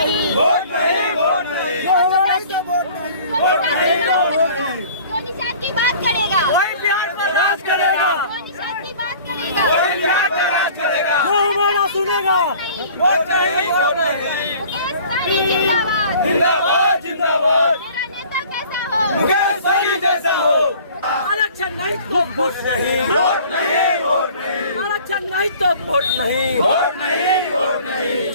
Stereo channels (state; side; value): inverted; both; correlation -0.49